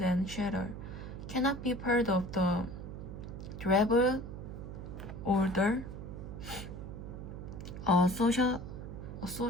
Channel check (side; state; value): right; noise; hum, 9 dB below the sound